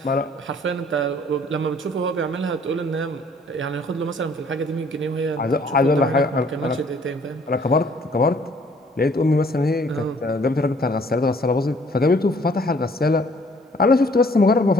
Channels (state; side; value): normal; both; correlation 0.59